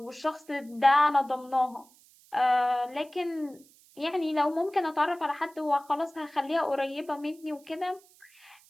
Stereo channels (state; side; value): noise; right; hiss, 28 dB below the sound